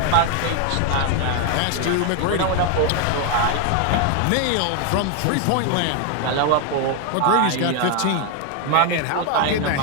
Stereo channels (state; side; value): different; both; correlation 0.01